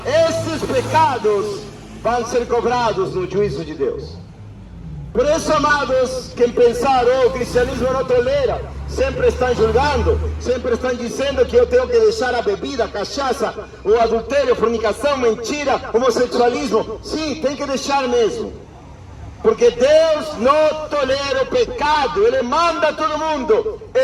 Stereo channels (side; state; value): both; identical; correlation 1.00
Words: esses pecados vão ser cobrados no juízo de Deus. Por isso, amados, quem pensar, o cristianismo não tolera, sempre estão julgando, sempre estão dizendo que eu tenho que deixar a bebida, a cachaça, o adultério, a fornicação, mentira, homossexualismo. Sim, tem que deixar mesmo. Porque Deus não tolera o pecado. Ele manda todo mundo,